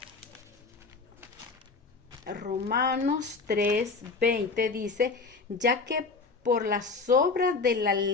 Romanos 3:20 dice, ya que por las obras de la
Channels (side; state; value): right; quieter; 4.2 dB